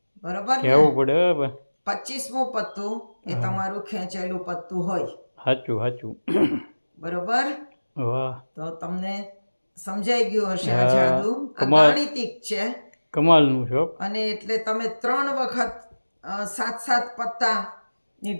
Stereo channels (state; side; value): inverted; both; correlation -1.00